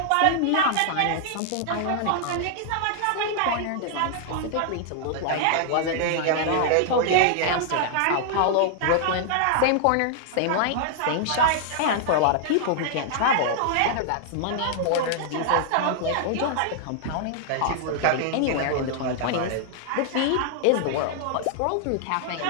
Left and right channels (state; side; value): different; both; correlation -0.01